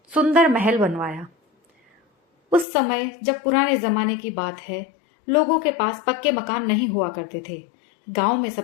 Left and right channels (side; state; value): right; drops out; at 2.7 s